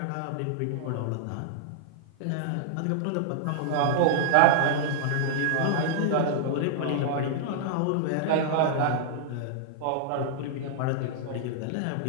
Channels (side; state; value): both; different; correlation -0.01